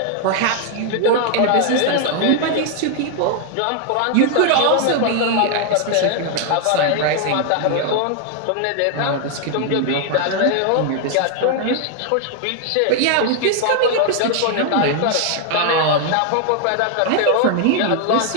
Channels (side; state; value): both; different; correlation 0.00